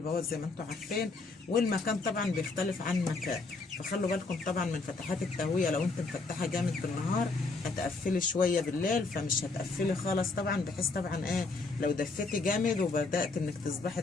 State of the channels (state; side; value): quieter; right; 3.8 dB